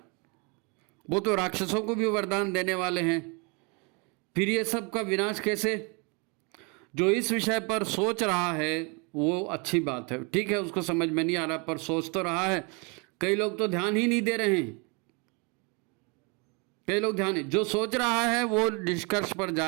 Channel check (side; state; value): left; quieter; 31.9 dB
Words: वो तो राक्षसों को भी वरदान देने वाले हैं, फिर ये सब का विनाश कैसे? जो इस विषय पर सोच रहा है वो अच्छी बात है, ठीक है, उसको समझ में नहीं आ रहा पर सोच तो रहा है। कई लोग तो ध्यान ही नहीं दे रहे हैं। कई लोग ध्यान, जो सोच रहा है वो निष्कर्ष पर